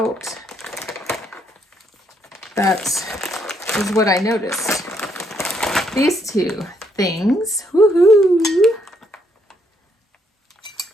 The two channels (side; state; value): both; normal; correlation 0.72